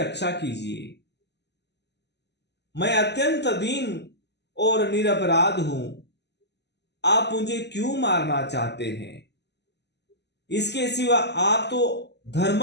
कीजिए। मैं अत्यंत दीन और निरपराध हूं, आप मुझे क्यों मारना चाहते हैं? इसके सिवा आप तो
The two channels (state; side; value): late; right; 0.50 ms